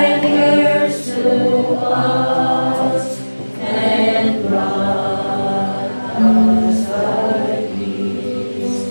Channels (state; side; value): inverted; both; correlation -1.00